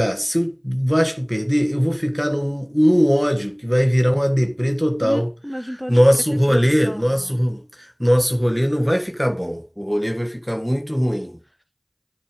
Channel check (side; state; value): both; identical; correlation 1.00